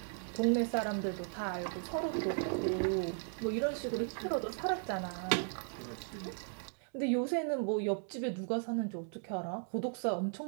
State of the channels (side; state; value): left; silent; 54 dB below the other